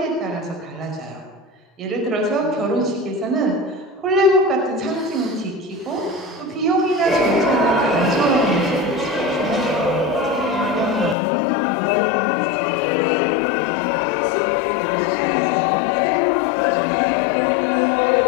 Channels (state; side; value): drops out; right; at 11.2 s